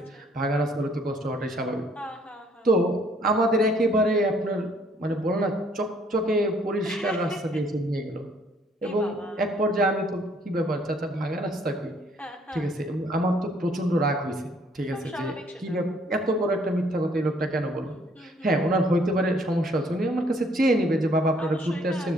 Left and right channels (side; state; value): both; normal; correlation 0.63